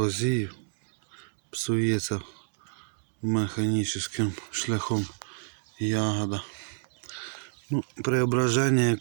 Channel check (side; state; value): left; silent; digital silence